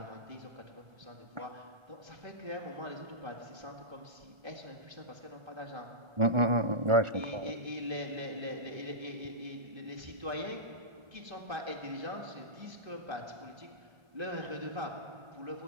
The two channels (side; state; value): left; late; 1.3 ms